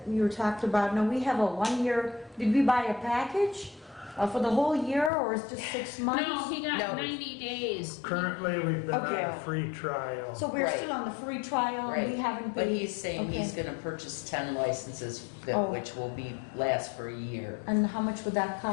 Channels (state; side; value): drops out; right; at 5.1 s